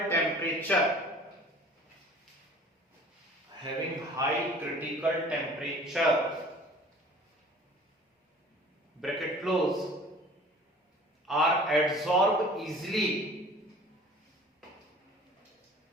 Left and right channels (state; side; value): normal; both; correlation 0.47